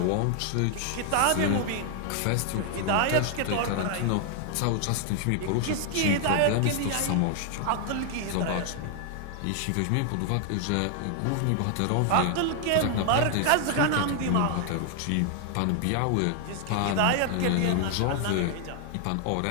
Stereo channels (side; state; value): both; different; correlation 0.00